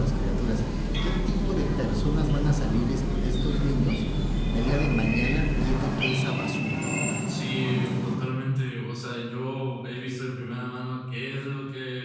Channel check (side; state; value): both; identical; correlation 1.00